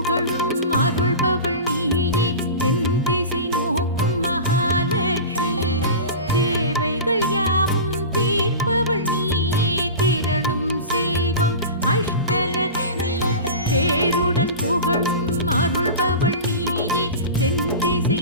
அருள்பவள் நீயே தென் திசை நோக்கும் மகாலட்சுமி தேவைகள் யாவும் தீர்ப்பவள் நீயே திரளும் செல்வம் அஷ்டலட்சுமி பேருடன் புகழும் அருள்பவள் நீயே தென் திசை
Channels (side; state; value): both; inverted; correlation -0.31